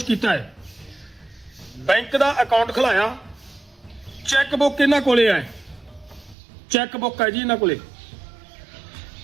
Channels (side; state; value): left; drops out; at 6.4 s